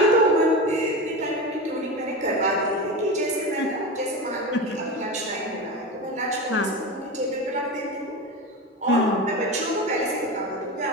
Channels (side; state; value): both; normal; correlation 0.24